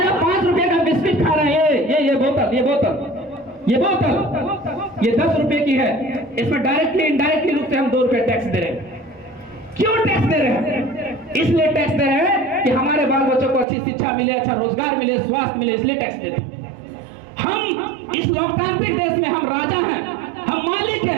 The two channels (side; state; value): left; drops out; at 13.7 s